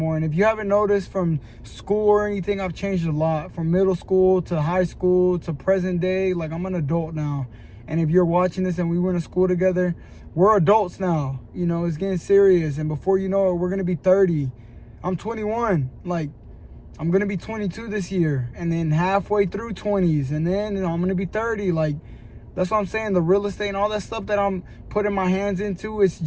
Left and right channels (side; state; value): both; identical; correlation 1.00